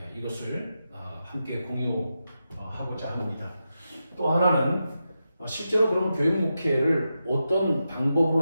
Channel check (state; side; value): inverted; both; correlation -0.89